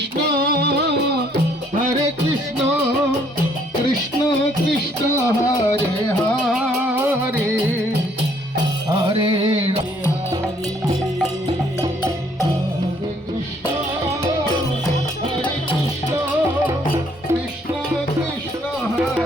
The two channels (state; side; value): normal; both; correlation 0.65